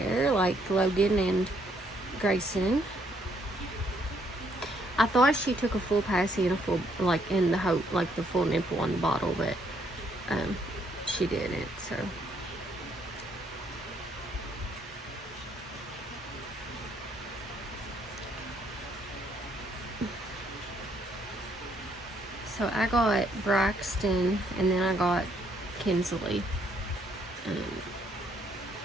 like Logan and Grayson. I thought she took a full passy and a full, like in the whole, like the full nipple on the bottle, but she didn't. So I got Braxton, and then I got Kensley.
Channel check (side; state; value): both; normal; correlation 0.70